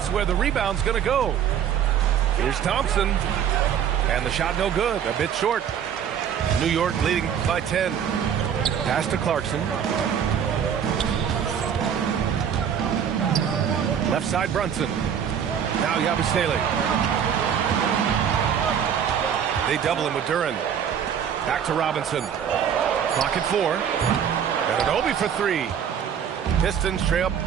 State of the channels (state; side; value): quieter; left; 8.4 dB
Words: where the rebound's going to go. Here's Thompson. And the shot no good. A bit short. New York leading by 10. Pass to Clarkson. Left side Brunson. Now Yabusele. They double him with Duran. Back to Robinson. Clock at 4. Ananobi for 3. Pistons trail